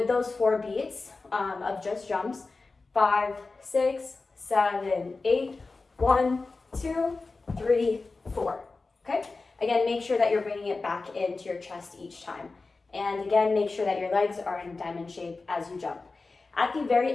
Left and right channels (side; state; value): right; quieter; 3.8 dB